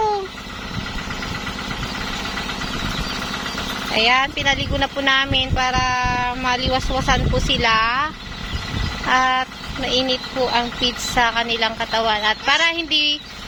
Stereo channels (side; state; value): both; identical; correlation 1.00